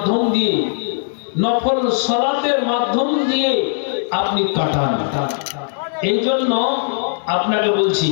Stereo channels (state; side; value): silent; right; digital silence